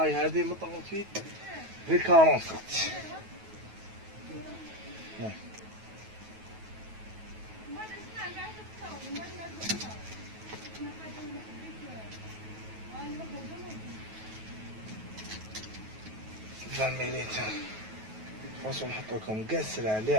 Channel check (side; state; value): left; late; 9.3 ms